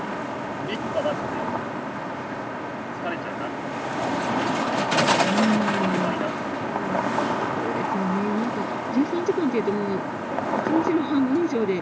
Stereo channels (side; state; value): both; identical; correlation 1.00